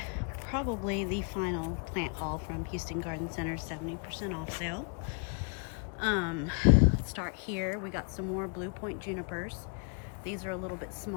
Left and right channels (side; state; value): right; quieter; 39.1 dB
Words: probably the final plant haul from Houston Garden Center 70% off sale. Let's start here. We got some more Blue Point junipers. These are a little bit